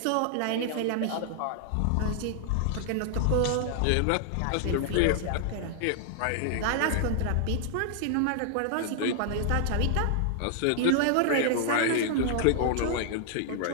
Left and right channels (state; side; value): different; both; correlation 0.00